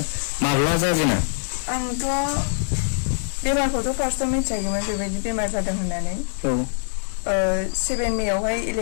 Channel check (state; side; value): silent; right; digital silence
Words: माब्ला जाजेना? आंथ' बेमारखौथ' फार्स्टआव मिथियाखैमोन बेबायदि बेमार जादों होननानै 7 मेआवहाय